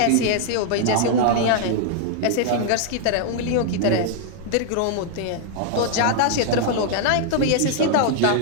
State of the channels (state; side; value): different; both; correlation -0.01